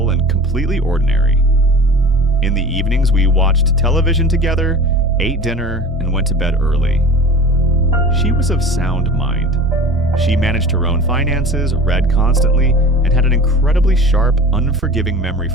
and completely ordinary. In the evenings, we watched television together, ate dinner, and went to bed early. She was of sound mind. She managed her own finances, read constantly, and had an incredibly sharp, unforgiving memory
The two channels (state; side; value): normal; both; correlation 0.38